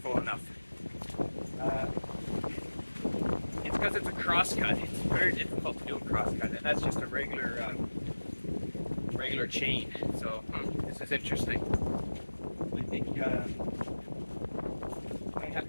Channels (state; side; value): inverted; both; correlation -1.00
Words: enough. It's because it's a crosscut. It's very difficult to do a crosscut, and that's just a regular chain. So this is interesting. I think I